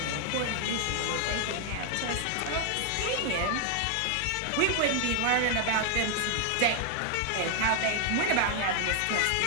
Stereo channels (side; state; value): both; different; correlation 0.00